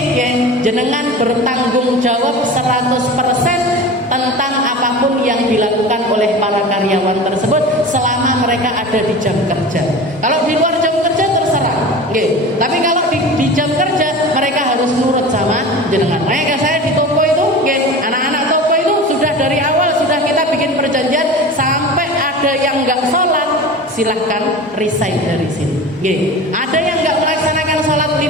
jenengan bertanggung jawab 100% tentang apapun yang dilakukan oleh para karyawan tersebut selama mereka ada di jam kerja. Kalau di luar jam kerja terserah, tapi kalau di jam kerja mereka harus nurut sama jenengan. Makanya saya di toko itu, anak-anak toko itu sudah dari awal sudah kita bikin perjanjian, sampai ada yang nggak sholat silahkan resign dari sini. Ada yang nggak melaksanakan sholat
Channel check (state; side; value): normal; both; correlation 0.34